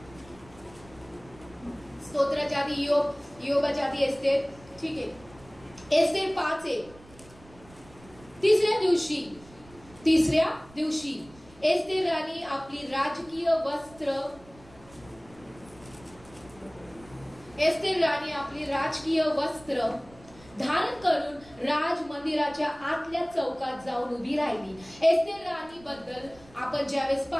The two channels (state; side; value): noise; right; rumble, 23 dB below the sound